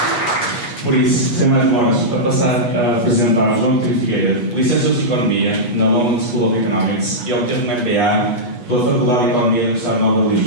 Por isso, sem mais demoras, a passar a apresentar João Coutinho Figueiredo, licenciado em Economia na London School of Economics e obteve um MBA pela Faculdade de Economia da Universidade Nova de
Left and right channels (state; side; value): late; right; 8.3 ms